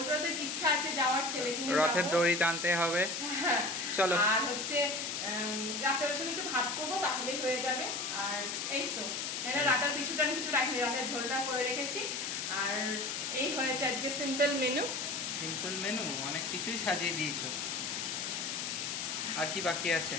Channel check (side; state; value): left; noise; hiss, 3 dB below the sound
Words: রথের ইচ্ছা আছে যাওয়ার, ছেলেকে নিয়ে রথের যাবো। দড়ি টানতে হবে। হ্যাঁ, চলো। আর হচ্ছে রাতের সময় একটু ভাত করবো, তাহলেই হয়ে যাবে। আর এই তো রাতের পিছুটা আমি কিছু রাখিনি, রাতের ঝোলটা করে রেখেছি। আর এই হয়েছে আজকে সিম্পল মেনু। সিম্পল মেনু, অনেক কিছুই সাজিয়ে দিয়েছো। আর কি বাকি আছে?